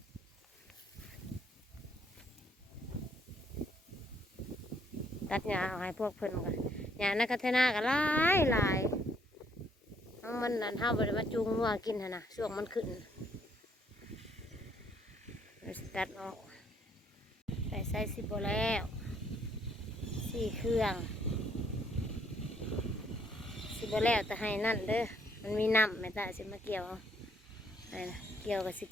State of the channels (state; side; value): normal; both; correlation 0.68